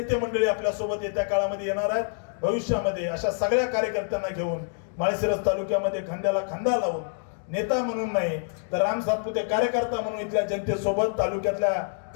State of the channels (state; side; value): silent; right; digital silence